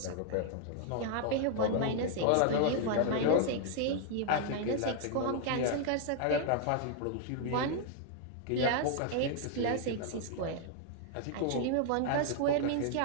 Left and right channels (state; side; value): different; both; correlation 0.00